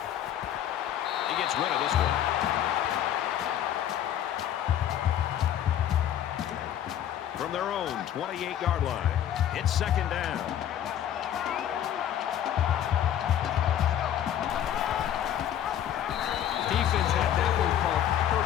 He gets rid of this one. From their own 28-yard line, it's second down.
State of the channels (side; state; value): right; quieter; 10.7 dB